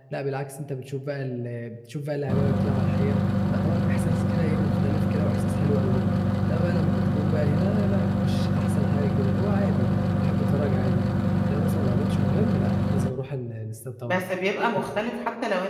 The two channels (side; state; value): both; identical; correlation 1.00